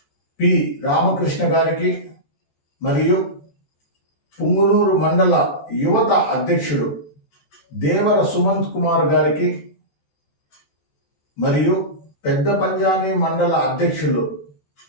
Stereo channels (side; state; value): right; late; 14 ms